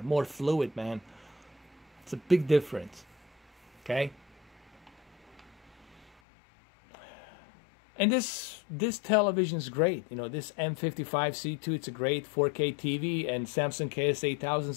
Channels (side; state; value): right; drops out; at 6.2 s